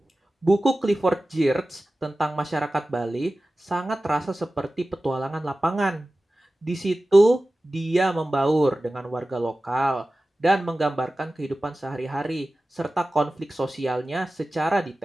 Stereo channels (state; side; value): normal; both; correlation 0.96